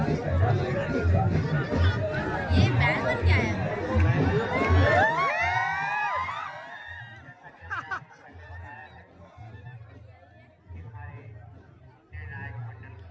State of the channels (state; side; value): identical; both; correlation 1.00